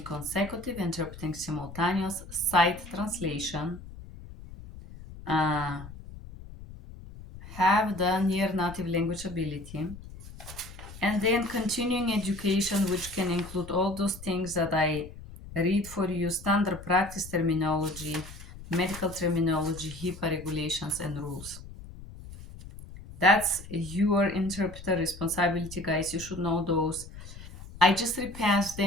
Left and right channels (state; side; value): noise; left; rumble, 15 dB below the sound